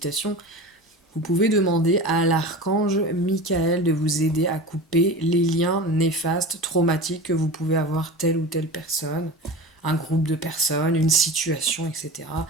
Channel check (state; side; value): normal; both; correlation 0.31